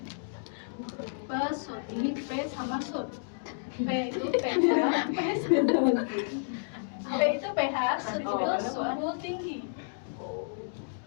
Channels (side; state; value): right; silent; digital silence